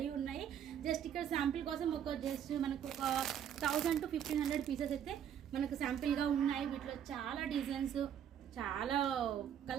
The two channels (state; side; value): quieter; left; 9.3 dB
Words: ఉన్నాయి. జస్ట్ ఇక్కడ శాంపిల్ కోసం జస్ట్ మనకు ఒక 1000 to 1500 పీసెస్ అయితే మనకు శాంపిల్గా ఉన్నాయి. వీటిలో చాలా డిజైన్స్, చాలా